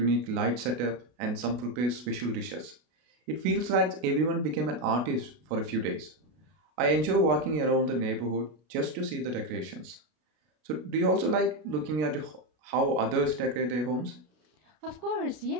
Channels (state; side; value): late; left; 32 ms